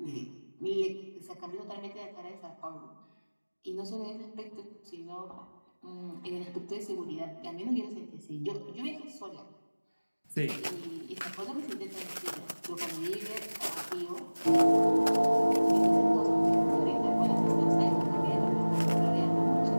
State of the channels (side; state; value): both; inverted; correlation -1.00